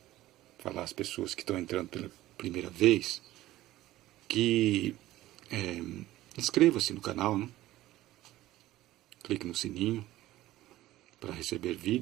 falar às pessoas que estão entrando pela primeira vez que inscreva-se no canal, né? Clique no sininho para receber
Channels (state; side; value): quieter; left; 15.7 dB